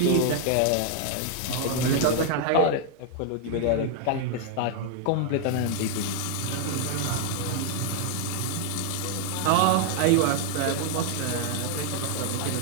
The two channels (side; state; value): both; different; correlation 0.00